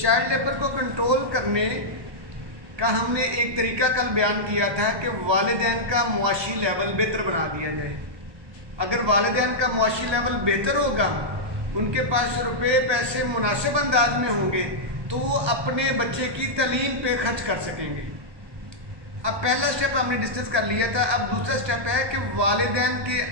लेबर को कंट्रोल करने का हमने एक तरीका कल बयान किया था कि वालिदैन का मुआशी लेवल बेहतर बना दिया जाए। अगर वालिदैन का मुआशी लेवल बेहतर होगा, उनके पास रुपए पैसे मुनासिब अंदाज में होंगे, तो वो अपने बच्चे की तालीम पे खर्च कर सकेंगे। अब पहला स्टेप हमने डिस्कस कर लिया था। अब दूसरा स्टेप है कि वालिदैन के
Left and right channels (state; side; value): late; left; 1.3 ms